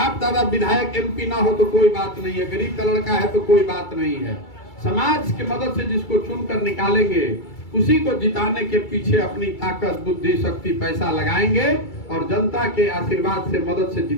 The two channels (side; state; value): right; late; 2.3 ms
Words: दादा विधायक एमपी ना हो तो कोई बात नहीं है, गरीब का लड़का है तो कोई बात नहीं है। समाज की मदद से जिसको चुनकर निकालेंगे उसी को जिताने के पीछे अपनी ताकत, बुद्धि, शक्ति, पैसा लगाएंगे और जनता के आशीर्वाद से, मदद से